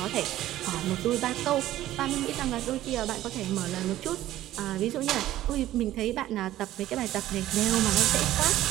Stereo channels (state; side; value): quieter; left; 14.1 dB